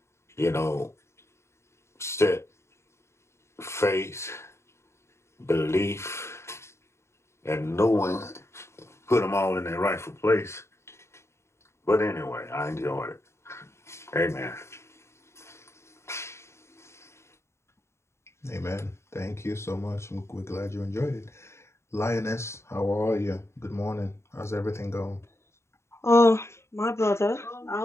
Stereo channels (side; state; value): right; late; 0.13 ms